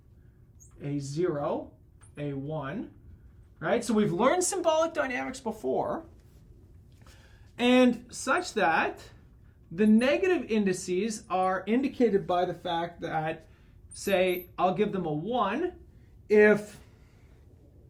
a 0, a 1, right? So we've learned symbolic dynamics before. And such that the negative indices are indicated by the fact that, say, I'll give them a 1 if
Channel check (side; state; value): both; identical; correlation 1.00